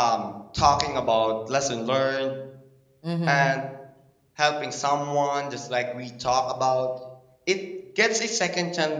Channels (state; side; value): identical; both; correlation 1.00